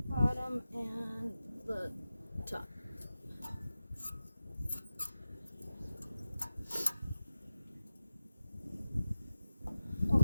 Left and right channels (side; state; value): both; inverted; correlation -0.92